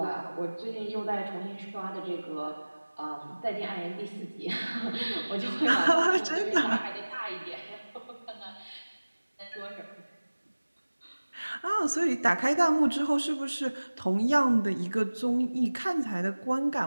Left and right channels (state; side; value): inverted; both; correlation -1.00